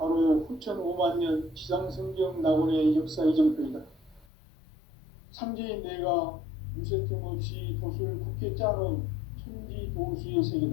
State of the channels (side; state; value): right; drops out; at 4.2 s